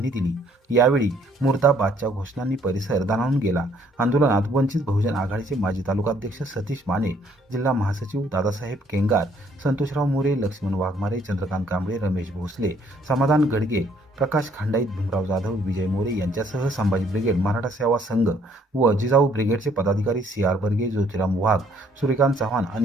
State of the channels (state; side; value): normal; both; correlation 0.64